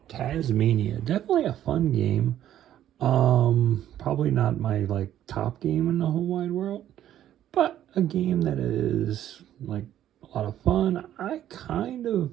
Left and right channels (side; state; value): left; quieter; 11.7 dB